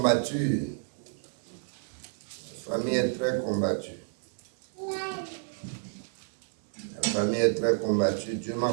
La famille est très combattue. La famille est très combattue. Dieu m'a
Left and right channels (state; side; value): silent; left; 57 dB below the other